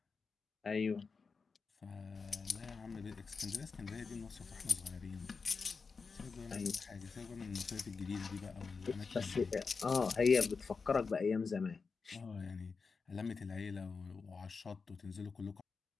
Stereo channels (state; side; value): quieter; right; 4.8 dB